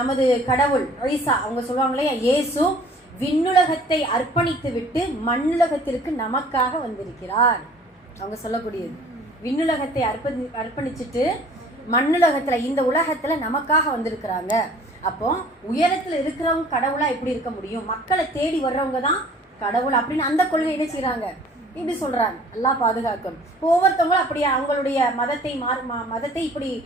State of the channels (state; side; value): normal; both; correlation 0.51